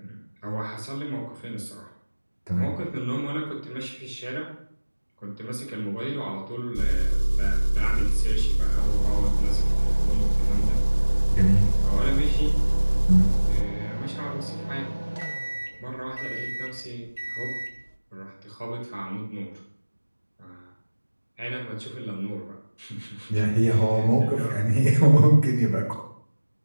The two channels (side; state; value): both; inverted; correlation -1.00